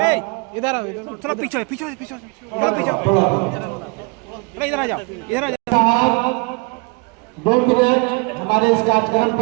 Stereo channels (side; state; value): left; quieter; 31.1 dB